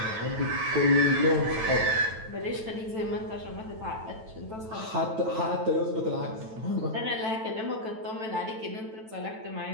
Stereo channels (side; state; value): left; late; 9.1 ms